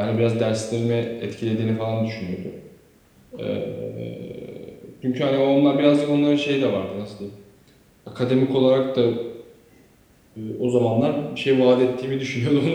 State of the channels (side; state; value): both; identical; correlation 1.00